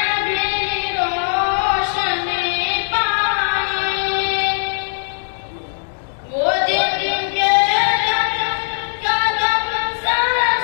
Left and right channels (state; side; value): silent; right; 66 dB below the other